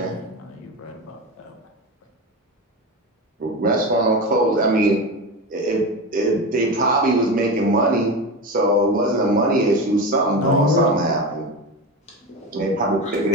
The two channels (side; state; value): both; normal; correlation 0.23